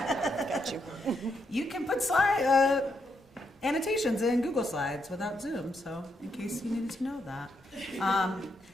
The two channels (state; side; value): normal; both; correlation 0.79